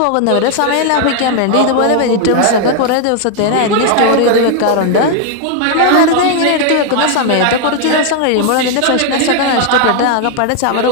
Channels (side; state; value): both; different; correlation 0.00